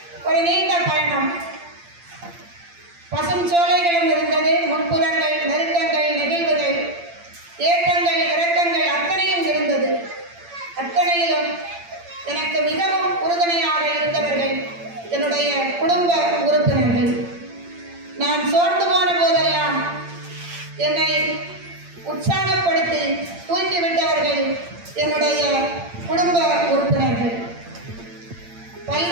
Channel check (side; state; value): left; late; 8.7 ms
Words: ஒரு நீண்ட பயணம். பசும் சோலைகளும் இருந்தது, முட்புறங்கள், நெருக்கங்கள், நெகிழ்வுகள், ஏற்றங்கள், இறக்கங்கள் அத்தனையும் இருந்தது. அத்தனையிலும் எனக்கு மிகவும் உறுதுணையாக இருந்தவர்கள் என்னுடைய குடும்ப உறுப்பினர்கள். நான் சோர்ந்து போன போதெல்லாம் என்னை உற்சாகப்படுத்தி தூக்கிவிட்டவர்கள் என்னுடைய குடும்ப உறுப்பினர்கள்.